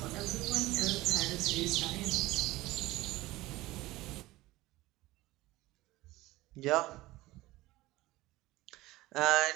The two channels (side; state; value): left; quieter; 18.5 dB